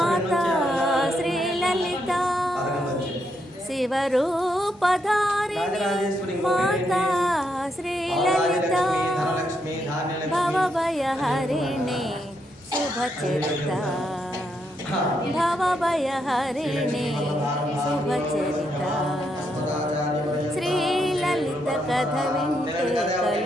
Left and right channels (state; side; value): normal; both; correlation 0.79